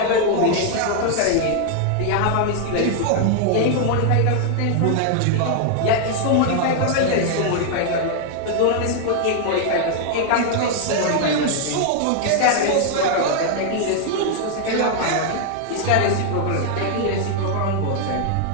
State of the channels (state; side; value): different; both; correlation 0.00